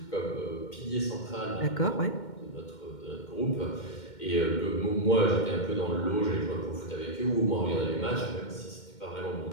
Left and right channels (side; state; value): right; late; 2.1 ms